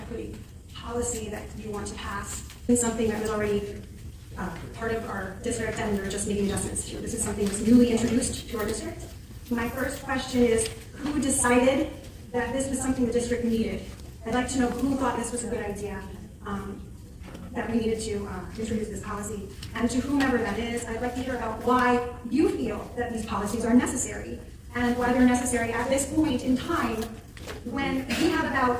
policy that you want to pass is something that was already part of our district and we're just making adjustments to. This is something that's newly introduced to our district. My first question is, who decided that this was something the district needed? I'd like to know who thought this was a good idea, that we needed to introduce this policy. And to whomever that is, I'd like to hear about why you feel that these policies are necessary and why they're necessary at this point in time when we have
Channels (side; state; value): both; identical; correlation 1.00